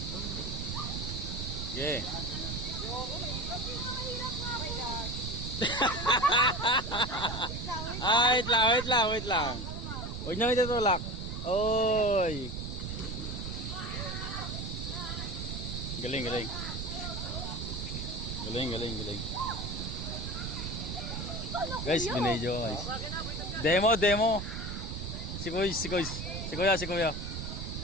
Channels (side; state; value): right; noise; rumble, 5 dB below the sound